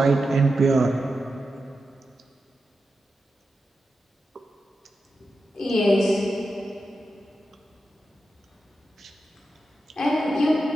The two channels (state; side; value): normal; both; correlation 0.90